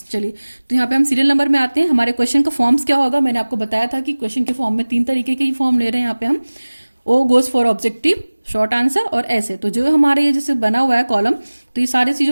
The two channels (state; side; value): inverted; both; correlation -1.00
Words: चलिए तो यहाँ पे हम सीरियल नंबर में आते हैं। हमारे क्वेश्चन का फॉर्म्स क्या होगा, मैंने आपको बताया था कि क्वेश्चन के फॉर्म में 3 तरीके के ही फॉर्म ले रहे हैं यहाँ पे हम। O goes for objective, short answer और ऐसे। तो जो हमारे ये जैसे बना हुआ है कॉलम, तो ये सारी